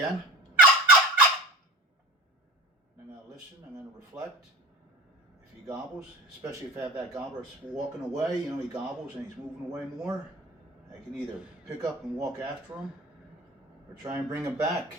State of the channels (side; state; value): both; normal; correlation 0.36